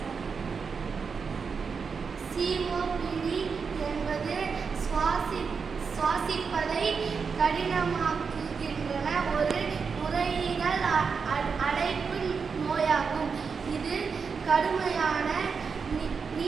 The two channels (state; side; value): quieter; left; 5.5 dB